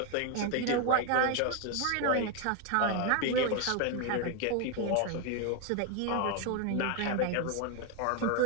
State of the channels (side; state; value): both; different; correlation 0.01